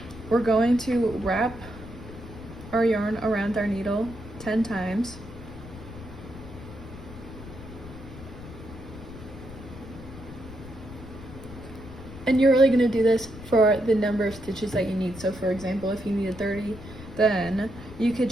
we're going to wrap our yarn around our needle 10 times. And you're really going to do this for the number of stitches that you need. So for example, if you needed 30, then you could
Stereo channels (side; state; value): left; noise; rumble, 14 dB below the sound